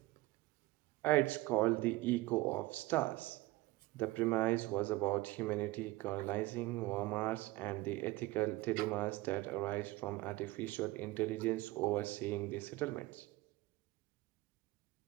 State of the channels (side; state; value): left; quieter; 19.4 dB